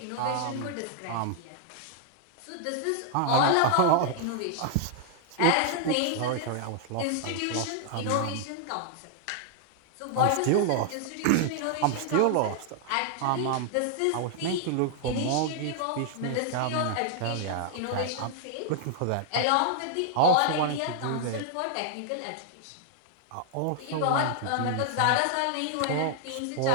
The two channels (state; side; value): different; both; correlation 0.00